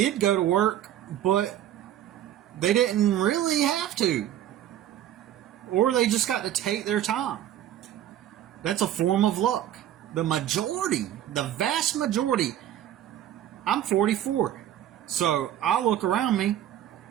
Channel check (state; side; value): quieter; left; 11.6 dB